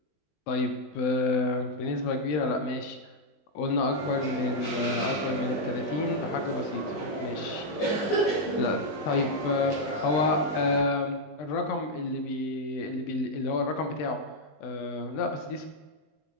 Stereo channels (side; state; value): right; late; 20 ms